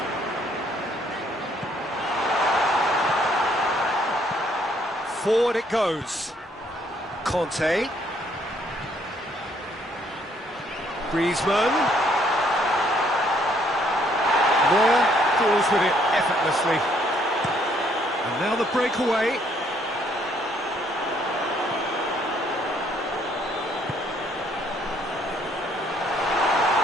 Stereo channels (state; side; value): normal; both; correlation 0.67